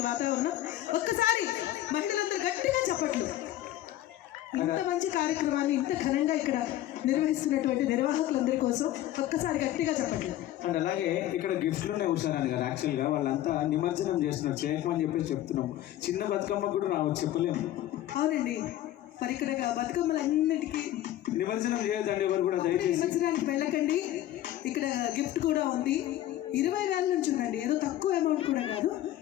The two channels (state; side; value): quieter; right; 13.5 dB